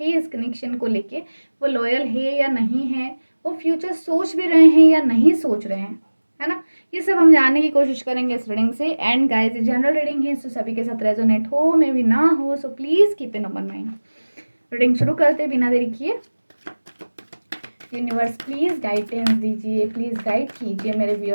इस कनेक्शन को लेके, वो लॉयल है या नहीं है, वो फ्यूचर सोच भी रहे हैं या नहीं सोच रहे हैं, है ना। ये सब हम जानने की कोशिश करेंगे इस रीडिंग से। एंड गाइस, ये जनरल रीडिंग है, तो सभी के साथ रेजोनेट हो मे भी ना हो, so please keep in open mind. Reading शुरू करते बिना देरी किए। यूनिवर्स प्लीज़ गाइडेंस दीजिए, प्लीज़ गाइड कीजिए मेरे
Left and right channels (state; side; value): inverted; both; correlation -1.00